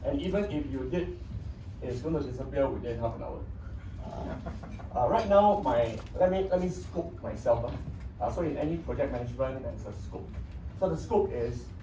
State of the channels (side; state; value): both; identical; correlation 1.00